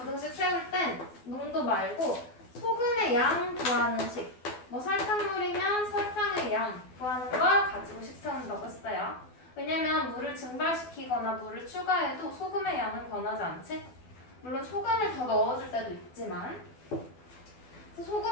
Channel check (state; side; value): late; right; 12 ms